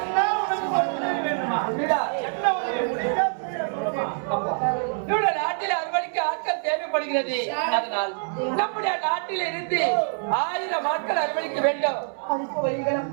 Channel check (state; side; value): silent; left; 62 dB below the other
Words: என்ன உனக்கு ஒரு உதவி வேணுமா? இல்லடா. என்ன உதவி? முடிஞ்சா சொல்லுமா? நம்முடைய நாட்டில் அறுவடைக்கு ஆட்கள் தேவைப்படுகிறது. அதனால் நம்முடைய நாட்டில் இருந்து 1000 ஆட்கள் அறுவடைக்க வேண்டும்.